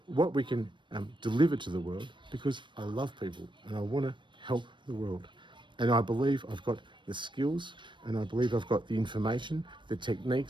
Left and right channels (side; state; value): left; late; 0.23 ms